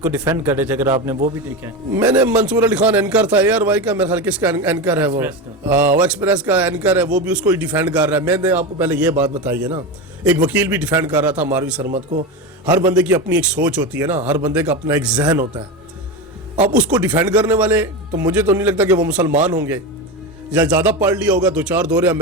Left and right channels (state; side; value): normal; both; correlation 0.19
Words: کو ڈیفینڈ کر رہے تھے، اگر آپ نے وہ بھی دیکھا ہے. میں نے منصور علی خان اینکر تھا ARY کا، میرے خیال کس کا اینکر ہے وہ ایکسپریس کا اینکر ہے، وہ بھی اس کو ہی ڈیفینڈ کر رہا ہے. میں نے آپ کو پہلے یہ بات بتائی ہے نا، ایک وکیل بھی ڈیفینڈ کر رہا تھا ماروی سرمد کو. ہر بندے کی اپنی ایک سوچ ہوتی ہے نا، ہر بندے کا اپنا ایک ذہن ہوتا ہے. اب اس کو ڈیفینڈ کرنے والے تو مجھے تو نہیں لگتا کہ وہ مسلمان ہوں گے، یا زیادہ پڑھ لیا ہوگا، 2-4 دورے